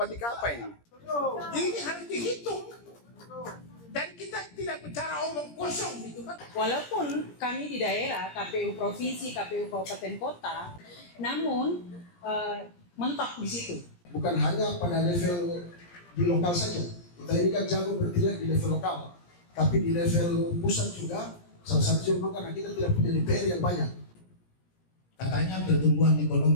apa ini? Ini harus dihitung. Dan kita tidak bicara omong kosong gitu kan. Walaupun kami di daerah, KPU provinsi, KPU kabupaten kota, namun mentok di situ. Bukan hanya pada level di lokal saja. Kita ini kan jago bertindak di level lokal, tapi di level pusat juga. Salah satu juga karena kita tidak punya DPR yang banyak. Katanya pertumbuhan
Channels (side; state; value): right; late; 17 ms